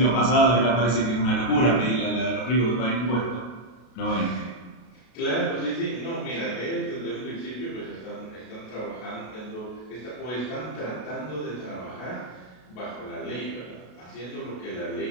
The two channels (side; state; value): right; late; 33 ms